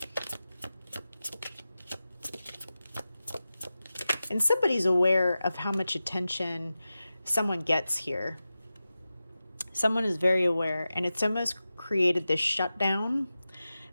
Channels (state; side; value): inverted; both; correlation -0.94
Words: And somebody's aware of how much attention someone gets here. Someone is very aware, and it's almost created this shutdown